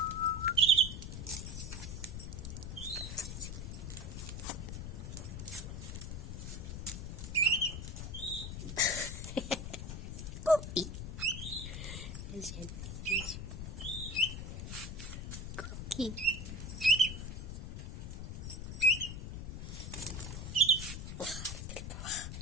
كوكي. اجي كوكي.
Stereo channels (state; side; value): noise; left; rumble, 6 dB below the sound